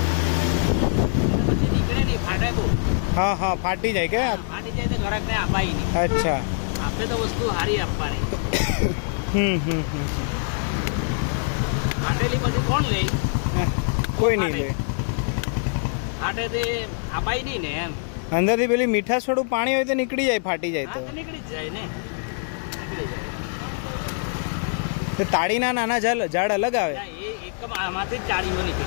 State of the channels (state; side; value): silent; right; digital silence